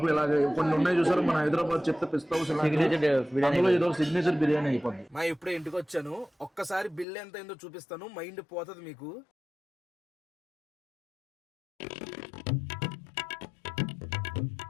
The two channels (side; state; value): right; drops out; at 7.1 s